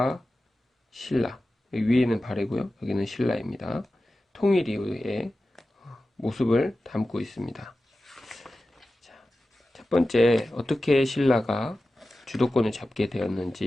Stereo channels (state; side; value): normal; both; correlation 0.94